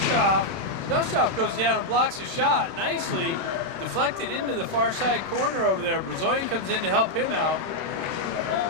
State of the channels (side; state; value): left; late; 30 ms